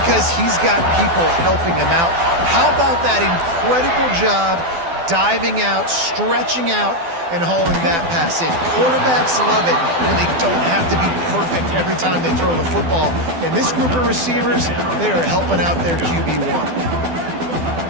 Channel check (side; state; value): left; late; 12 ms